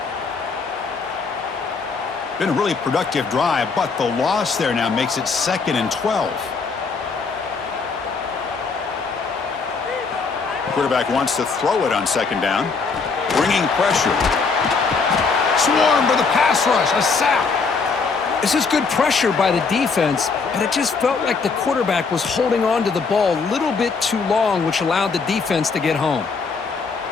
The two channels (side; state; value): right; quieter; 4.8 dB